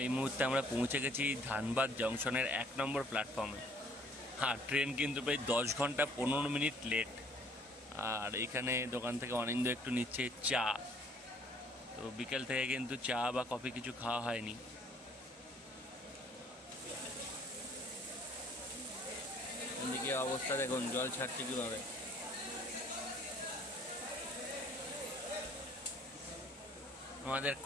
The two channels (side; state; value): both; normal; correlation 0.59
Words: এই মুহূর্তে আমরা পৌঁছে গেছি ধানবাদ জংশনের 1 নম্বর প্ল্যাটফর্মে। হ্যাঁ, ট্রেন কিন্তু প্রায় 10 ঘন্টা 15 মিনিট লেট। আর এইখানে দোকান থেকে অনিন্দ একটু নিচ্ছে চা। তো বিকেল থেকে কিন্তু চা বা কফি কিছু খাওয়া হয়নি। এদিকে অবস্থা দেখুন, জল ছাড়ছে কিভাবে। আমাদের